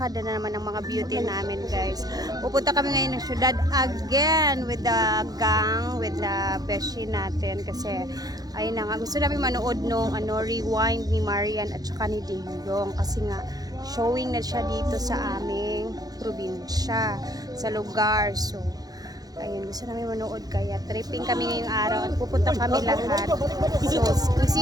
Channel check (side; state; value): left; late; 0.19 ms